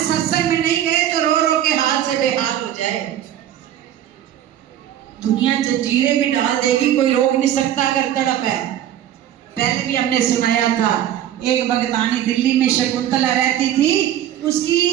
में नहीं गए तो रो रो के हाथ से बेहाल हो जाए। दुनिया जंजीरें भी डाल देगी, कोई रोक नहीं सकता अगर तड़प है। पहले भी हमने सुनाया था, एक भगतानी दिल्ली में शकुंतला रहती थी, उसकी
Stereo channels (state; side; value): quieter; left; 11.3 dB